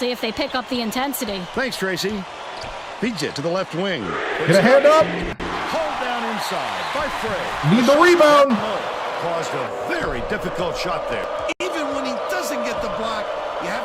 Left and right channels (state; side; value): identical; both; correlation 1.00